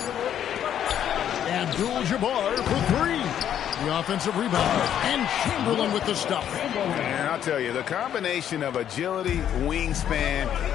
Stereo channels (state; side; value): quieter; right; 10.0 dB